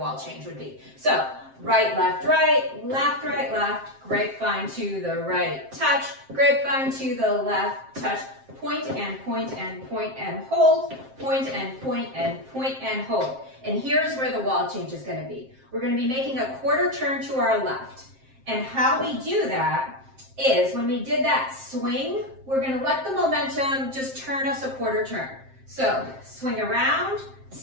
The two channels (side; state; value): left; late; 7.6 ms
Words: change would be. So, right, left, left, grapevine to the right, touch, grapevine to the left, touch, point and point and point and hold, point and point and point and hold. And here's where the wall change is going to be. We're going to be making a quarter turn to our left. And how we do that is when we did that swing, we're going to let the momentum just turn us a quarter turn. So swing around,